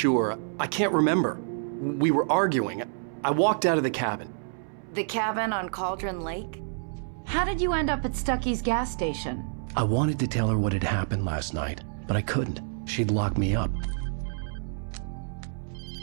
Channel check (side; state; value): left; silent; 59 dB below the other